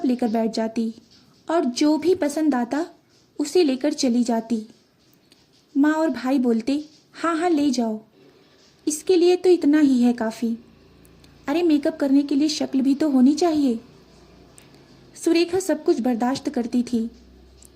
लेकर बैठ जाती और जो भी पसंद आता उसे लेकर चली जाती। माँ और भाई बोलते, हाँ हाँ ले जाओ, इसके लिए तो इतना ही है काफ़ी। अरे मेकअप करने के लिए शक्ल भी तो होनी चाहिए। सुरेखा सब कुछ बर्दाश्त करती थी,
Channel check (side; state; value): both; identical; correlation 1.00